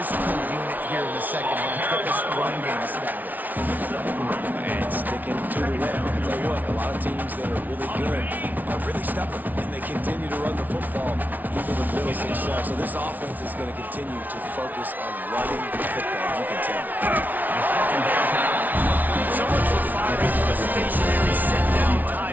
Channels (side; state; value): left; late; 0.080 ms